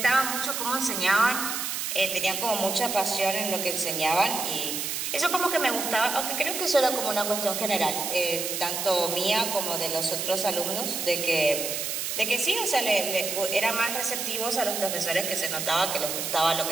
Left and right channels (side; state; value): right; noise; hiss, 3 dB below the sound